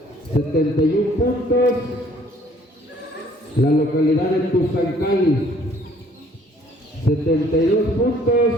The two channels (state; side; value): normal; both; correlation 0.59